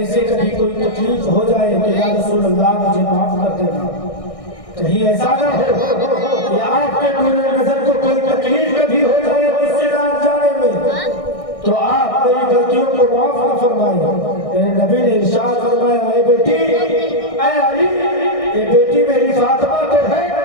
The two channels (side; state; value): right; late; 1.6 ms